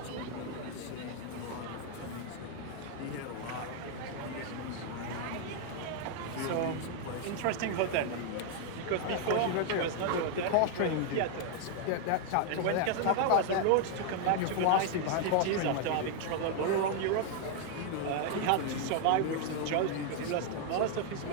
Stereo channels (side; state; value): both; different; correlation 0.00